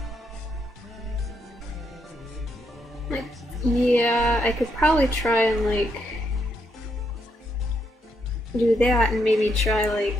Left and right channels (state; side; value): normal; both; correlation 0.78